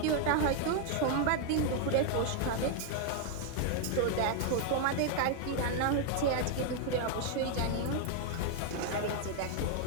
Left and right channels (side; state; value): both; different; correlation 0.00